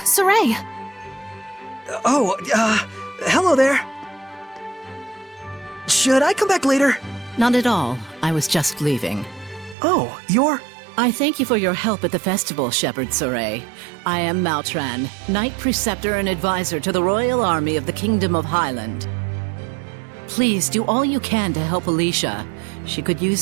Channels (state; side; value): drops out; left; at 9.8 s